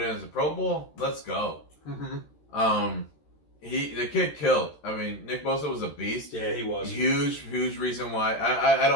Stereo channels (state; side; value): late; right; 13 ms